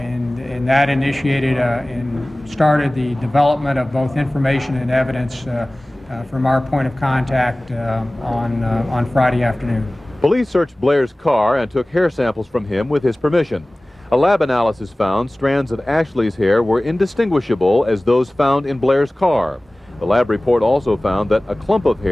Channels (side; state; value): both; normal; correlation 0.98